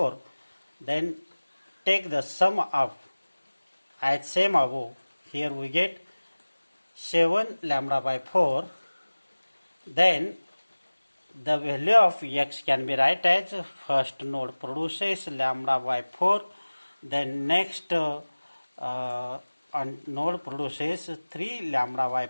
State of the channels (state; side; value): inverted; both; correlation -1.00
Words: then take the sum of as same above, here we get 7 lambda by 4, then the value of x can be write as first node produces lambda by 4, then next node produces 3 lambda by